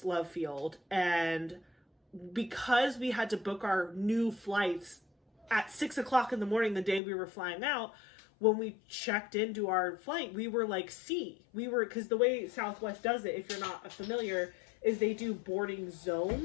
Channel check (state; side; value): drops out; right; at 7.0 s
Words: Love Field, and because we had to book our new flights at 6 o'clock in the morning the day we were flying out, when we checked into our flight, we were like because the way Southwest does it, if you're not familiar, is they do boarding